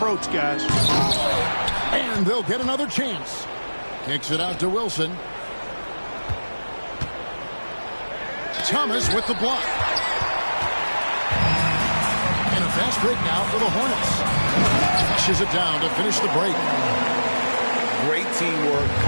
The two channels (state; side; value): inverted; both; correlation -1.00